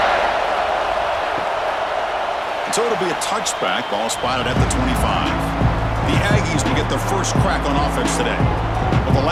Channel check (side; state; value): both; identical; correlation 1.00